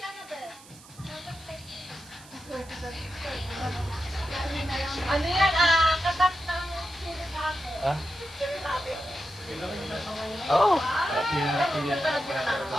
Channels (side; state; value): right; noise; hiss, 21 dB below the sound